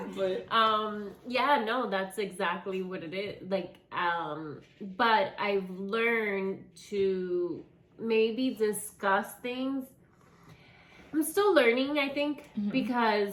Yeah, no, that's exactly what it is. Like, but I've learned to maybe discuss things. I'm still learning, I think,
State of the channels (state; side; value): identical; both; correlation 1.00